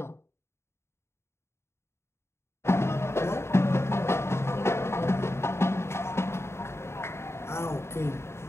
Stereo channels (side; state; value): right; late; 0.13 ms